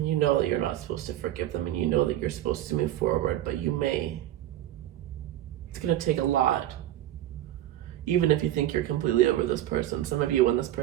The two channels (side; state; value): left; quieter; 13.2 dB